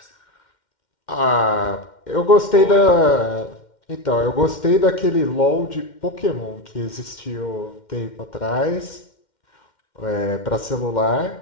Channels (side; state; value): right; late; 2.1 ms